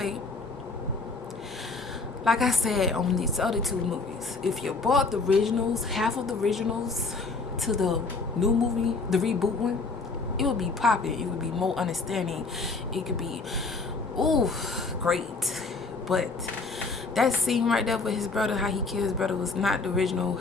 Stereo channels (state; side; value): quieter; right; 4.0 dB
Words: Like I said on these other two movies, if you bought the originals, half of the originals, to the new movie, the reboot one, it would be popping. It would be more understanding. It could be, ooh, great. But that scene right there with his brother, how he killed his brother, was not the original